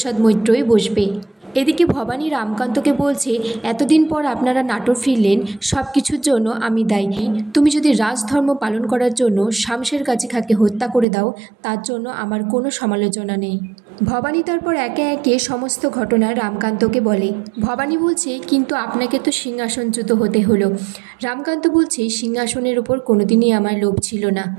মৈত্রই বসবে। এদিকে ভবানী রামকান্তকে বলছে এতদিন পর আপনারা নাটোর ফিরলেন, সব কিছুর জন্য আমি দায়ী। তুমি যদি রাজধর্ম পালন করার জন্য শামশের গাজী খাঁকে হত্যা করে দাও তার জন্য আমার কোনো সমালোচনা নেই। ভবানী তারপর একে একে সমস্ত ঘটনা রামকান্তকে বলে। ভবানী বলছে কিন্তু আপনাকে তো সিংহাসনচ্যুত হতে হলো। রামকান্ত বলছে সিংহাসনের ওপর কোনোদিনই আমার লোভ ছিল না,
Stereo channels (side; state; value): left; drops out; at 11.1 s